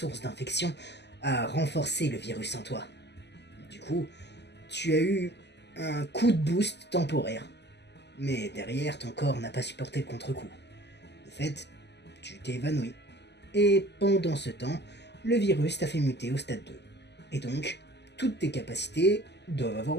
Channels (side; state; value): right; late; 0.50 ms